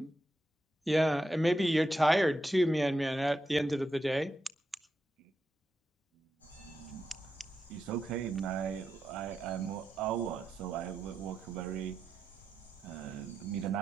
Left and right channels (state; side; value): normal; both; correlation 0.87